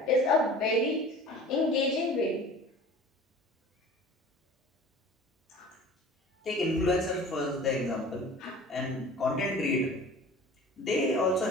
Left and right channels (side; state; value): both; normal; correlation 0.42